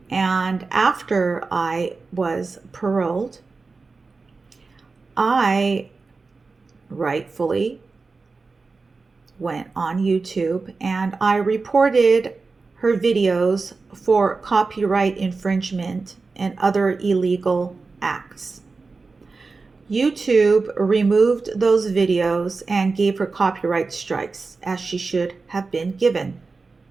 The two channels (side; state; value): left; quieter; 4.1 dB